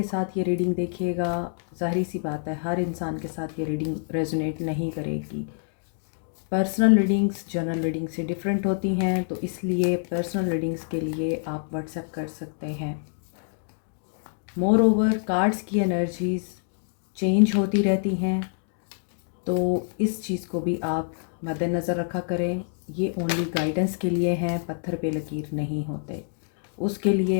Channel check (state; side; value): silent; right; digital silence